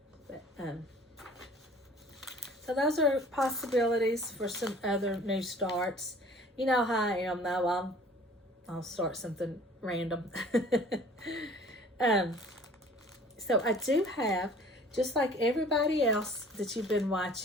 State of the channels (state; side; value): normal; both; correlation 0.50